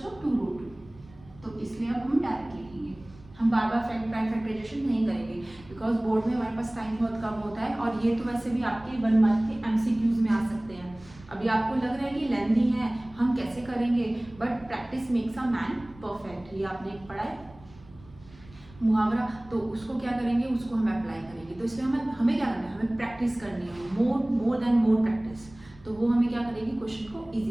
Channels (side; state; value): right; noise; rumble, 23 dB below the sound